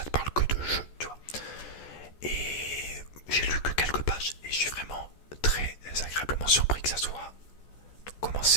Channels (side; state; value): right; late; 14 ms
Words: te parle que de jeux, tu vois. Et j'ai lu que quelques pages, et je suis vraiment très agréablement surpris que ça soit comment